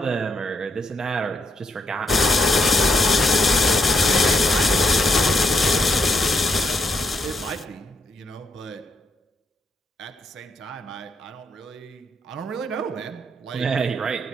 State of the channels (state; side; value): normal; both; correlation 0.78